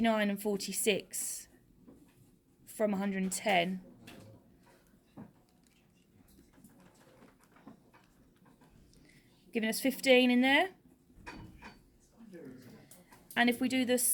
and 46 from 110, giving us 15 in there. And if we do the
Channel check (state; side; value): identical; both; correlation 1.00